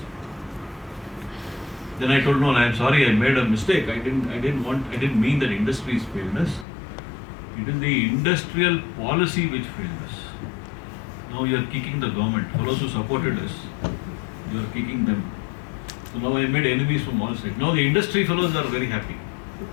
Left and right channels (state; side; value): drops out; right; at 6.7 s